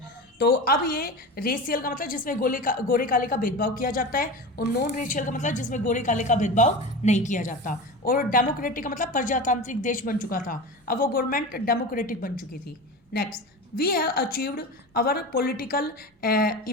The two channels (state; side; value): normal; both; correlation 0.28